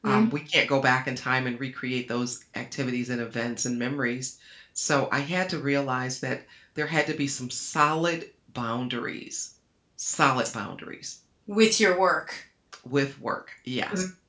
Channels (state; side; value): identical; both; correlation 1.00